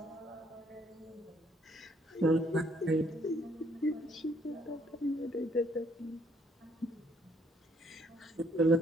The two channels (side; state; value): both; normal; correlation 0.67